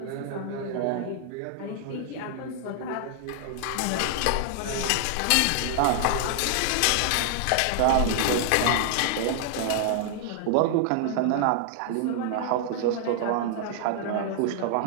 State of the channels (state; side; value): different; both; correlation -0.01